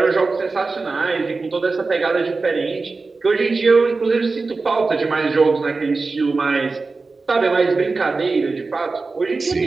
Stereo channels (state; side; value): quieter; left; 3.9 dB